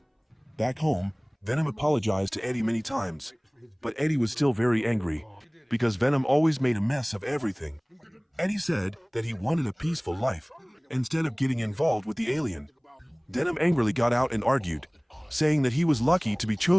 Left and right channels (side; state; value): both; identical; correlation 1.00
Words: Back home, Venom apologized to Eddie many times, but Eddie was still very angry, because Venom always made a mess of everything. Eddie said that he wanted a peaceful life, instead of getting involved with the alien. Venom angrily got out and argued, saying that he was lucky to be